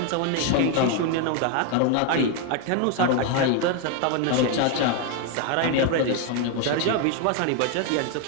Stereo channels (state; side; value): different; both; correlation 0.01